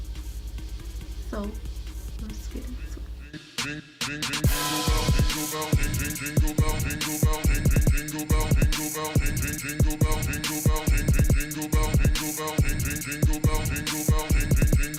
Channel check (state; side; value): identical; both; correlation 1.00